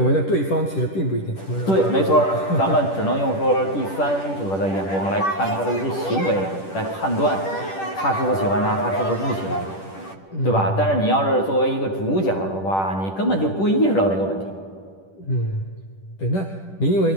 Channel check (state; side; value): late; right; 10 ms